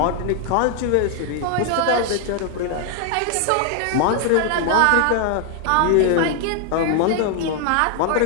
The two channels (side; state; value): both; different; correlation 0.00